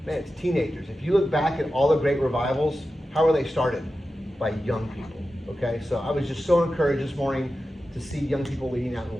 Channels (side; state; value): both; normal; correlation 0.93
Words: man, it's teenagers. If you look back at all the great revivals, how were they started? By young people, okay? So I was just so encouraged this morning to see young people leading out in